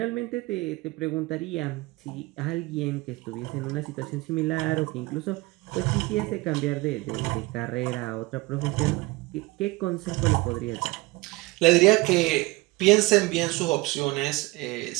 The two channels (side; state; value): left; quieter; 22.0 dB